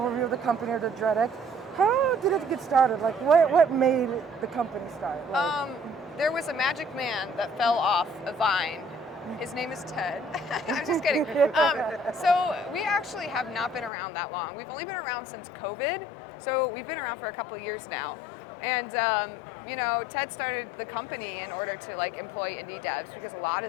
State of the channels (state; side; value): drops out; right; at 13.9 s